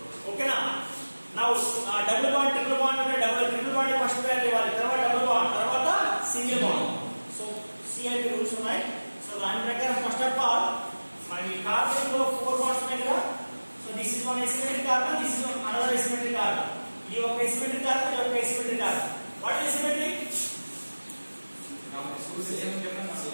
Okay na? Now double bond, triple bond అంటే triple bond first priority ఇవ్వాలి. తర్వాత double bond, తర్వాత single bond. So CIP rules ఉన్నాయి. So దాని ప్రకారం first of all మరి carbon లో 4 bonds ఉన్నాయి కదా. So this is one asymmetric carbon, this is another asymmetric carbon. ఇది ఒక asymmetric carbon, ఇది ఒక asymmetric carbon. What is asymmetric?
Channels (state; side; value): inverted; both; correlation -1.00